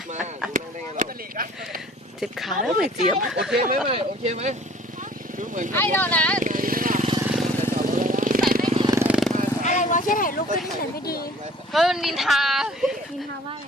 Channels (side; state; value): both; normal; correlation 0.52